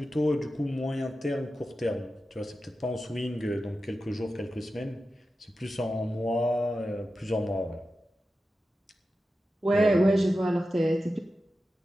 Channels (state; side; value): normal; both; correlation 0.92